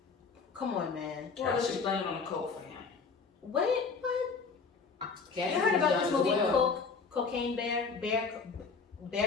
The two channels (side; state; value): right; quieter; 5.0 dB